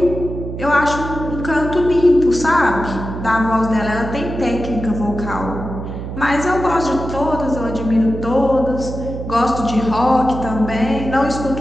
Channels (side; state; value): right; noise; hum, 7 dB below the sound